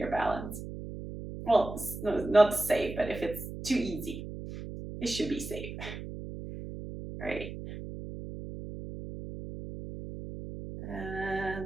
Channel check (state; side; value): noise; right; hum, 9 dB below the sound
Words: balance. Well, not safe, but if it's too easy, it should be safe. Right.